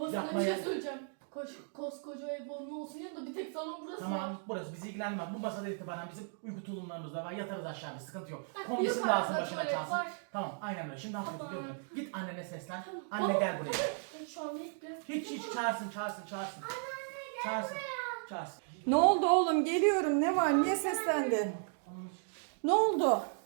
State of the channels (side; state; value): left; silent; 54 dB below the other